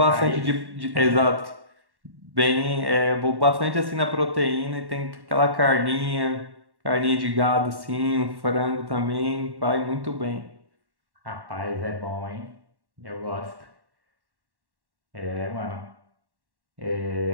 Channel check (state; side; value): late; left; 1.1 ms